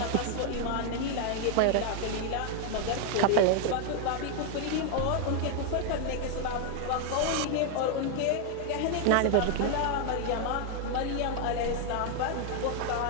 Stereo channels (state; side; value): different; both; correlation 0.00